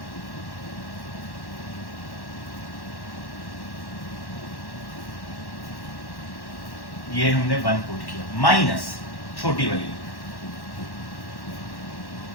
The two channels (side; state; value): right; late; 1.1 ms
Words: ये हमने 1 पुट किया माइनस छोटी वाली,